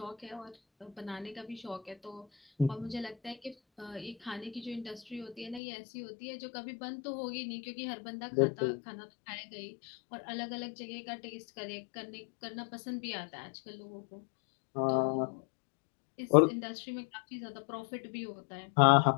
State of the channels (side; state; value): right; drops out; at 5.6 s